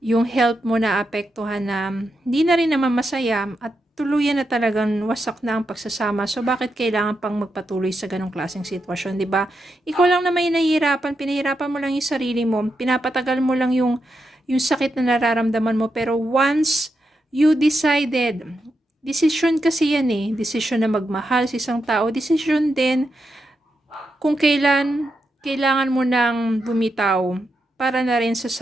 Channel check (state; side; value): normal; both; correlation 0.85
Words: health mo na apektuhan na hindi na rin naman masaya at tuluyan na talagang wasak na ang pagsasama. So, bakit kailangan pang magpatuloy sa ganong klaseng sitwasyon, di ba? Ikaw lang na may nahihirapan, pinahirapan mo lang yung sarili mo, pinapatagal mo lang yung sakit na nararamdaman mo. Pero once you decided, decision kasi yan eh, decision na magmahal sa isang tao, decision din kung kailangan mo nang bumitaw para na rin sa